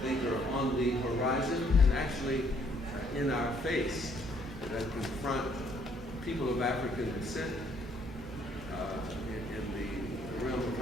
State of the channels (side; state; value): both; normal; correlation 0.66